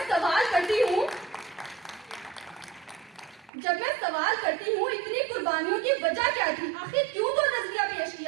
سوال کرتی ہوں اتنی قربانیوں کی وجہ کیا تھی، آخر کیوں تو نظریہ پیش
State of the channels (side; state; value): left; drops out; at 3.5 s